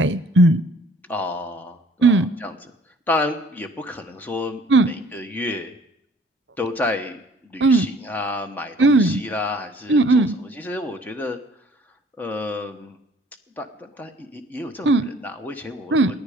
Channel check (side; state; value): both; normal; correlation 0.56